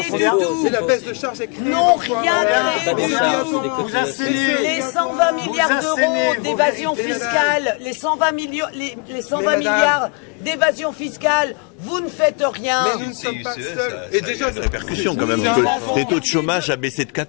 du tout. C'est la baisse de charges n'ont rien créé du tout. Vous assénez Les 120 milliards d'euros d'évasion fiscale, les 120 milliards d'évasion fiscale, vous ne faites rien. Mais nous ne sommes pas seuls. Et déjà, il y a une répercussion quand même. Le taux de chômage a baissé de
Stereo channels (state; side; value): quieter; right; 34.3 dB